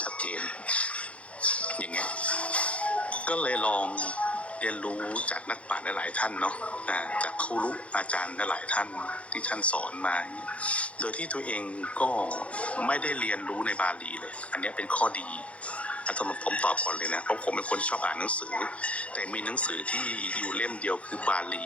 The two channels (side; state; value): right; late; 0.063 ms